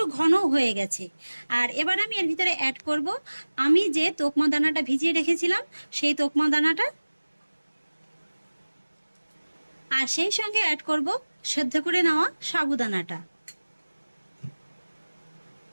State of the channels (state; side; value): inverted; both; correlation -1.00